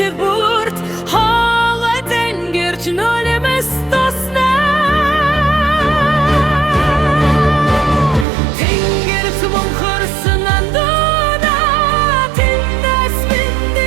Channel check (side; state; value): left; drops out; at 8.2 s